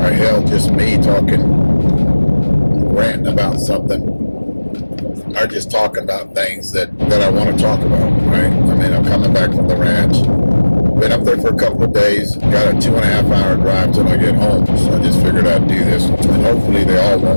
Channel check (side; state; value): both; inverted; correlation -1.00